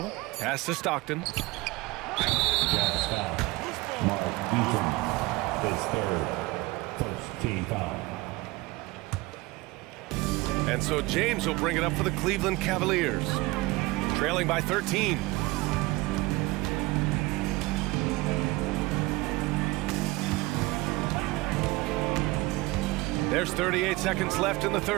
Pass to Stockton. Jazz foul. Mark Eaton, his third, first team foul. And so James will bring it up for the Cleveland Cavaliers. Trailing by 13. There's 38 seconds left in the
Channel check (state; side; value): quieter; left; 21.4 dB